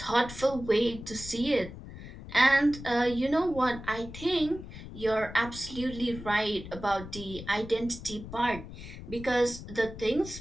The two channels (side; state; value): left; noise; rumble, 12 dB below the sound